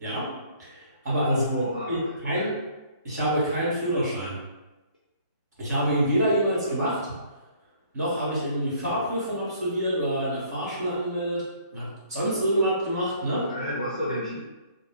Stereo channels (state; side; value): inverted; both; correlation -0.59